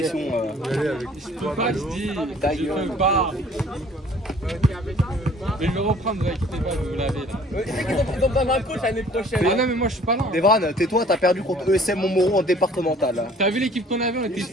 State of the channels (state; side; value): normal; both; correlation 0.54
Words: Je peux pas, je dis. Je peux pas. Je vais le reprendre, vous inquiétez pas, vous l'avez là. Tu sais qu'ils ont besoin d'un coach l'année prochaine. Ah non, mais moi je suis pas là. Devran, tais-toi, t'as perdu contre ESM Montmoreau en départemental. T'as vu l'équipe qu'on avait, on était